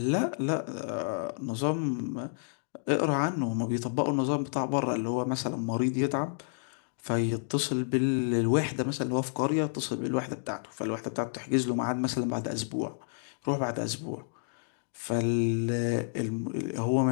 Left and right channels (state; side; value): silent; right; digital silence